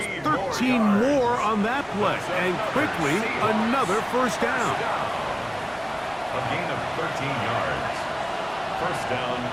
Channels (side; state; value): both; identical; correlation 1.00